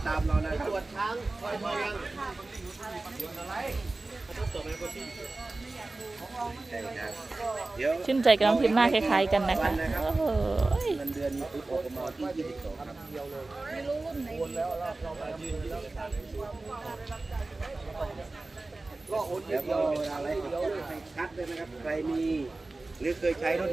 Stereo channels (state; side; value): quieter; left; 3.2 dB